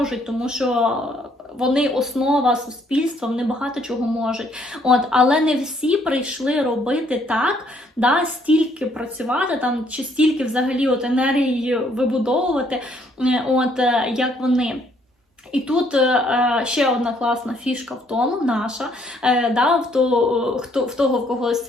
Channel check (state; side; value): normal; both; correlation 0.67